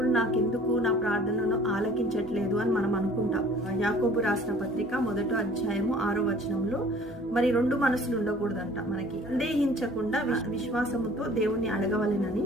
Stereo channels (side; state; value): both; normal; correlation 0.51